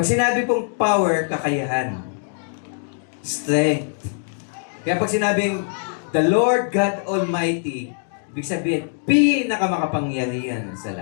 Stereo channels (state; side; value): silent; right; 64 dB below the other